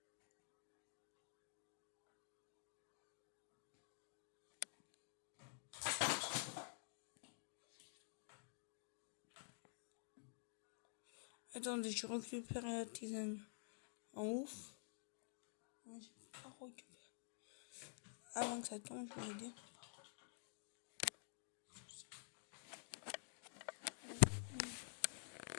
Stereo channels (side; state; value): right; silent; digital silence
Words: Attendez, je récupère la tisane. En ouf. J'ai pas récupéré. Avant que ça tombe, je vais dire.